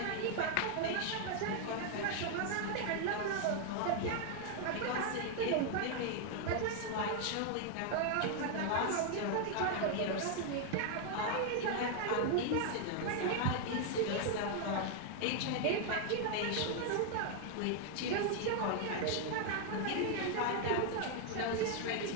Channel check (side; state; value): both; different; correlation 0.00